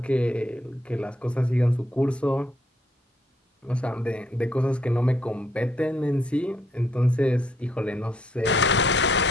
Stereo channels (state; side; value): normal; both; correlation 0.71